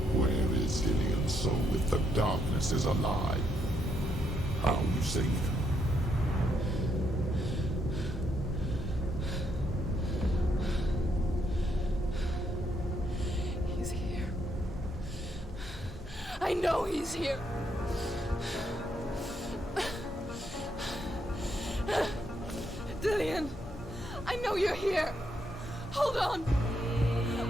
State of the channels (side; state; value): both; normal; correlation 0.76